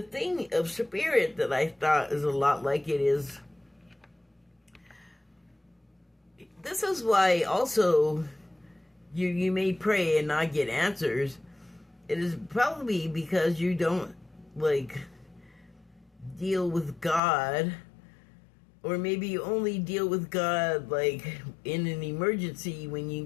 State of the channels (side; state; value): right; drops out; at 17.2 s